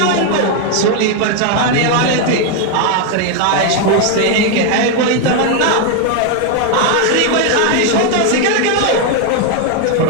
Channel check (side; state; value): both; different; correlation 0.01